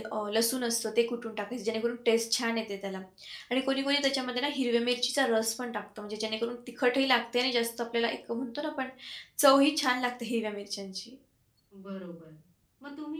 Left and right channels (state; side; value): identical; both; correlation 1.00